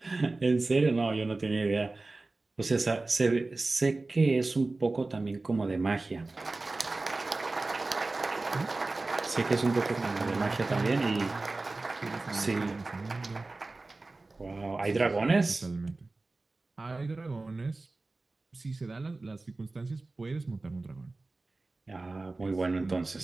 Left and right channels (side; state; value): left; quieter; 3.3 dB